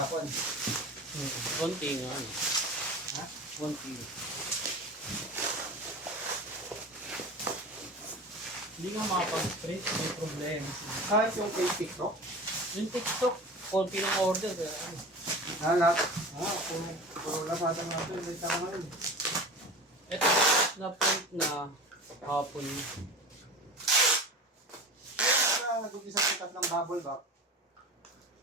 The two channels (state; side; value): normal; both; correlation 0.33